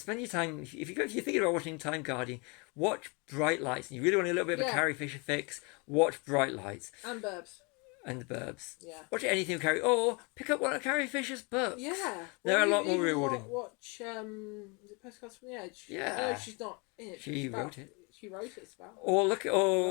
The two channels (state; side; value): quieter; right; 30.9 dB